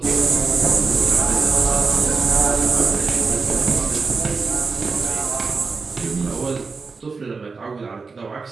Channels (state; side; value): quieter; left; 4.5 dB